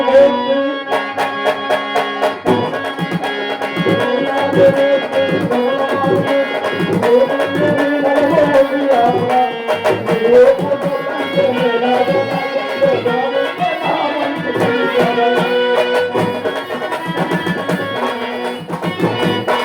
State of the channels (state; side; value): identical; both; correlation 1.00